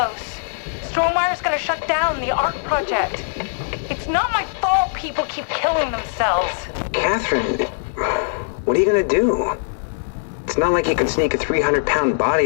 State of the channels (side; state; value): right; silent; digital silence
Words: Strohmeyer's gonna shut down the ARC project. It's not my fault people keep killing themselves. Catherine, what are you gonna do? It's not like you can sneak a 300-pound